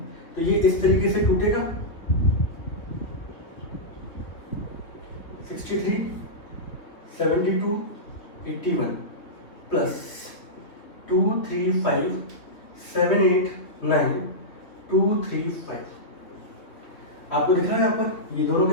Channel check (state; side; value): late; right; 3.4 ms